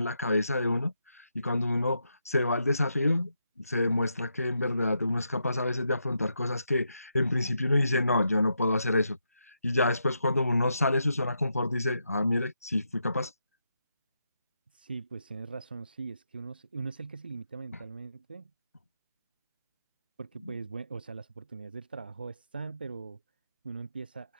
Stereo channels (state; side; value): inverted; both; correlation -0.82